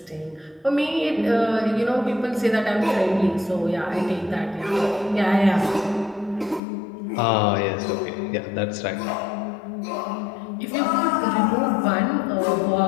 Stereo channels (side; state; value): right; drops out; at 6.6 s